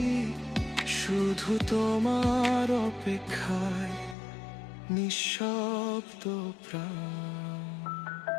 শুধু তোমার অপেক্ষায়, নিঃশব্দ প্রাণ।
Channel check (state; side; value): drops out; right; at 4.2 s